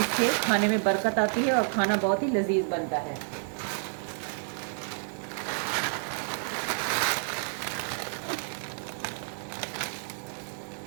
खाने में बरकत आती है और खाना बहुत ही लजीज बनता है।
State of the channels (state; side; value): silent; left; digital silence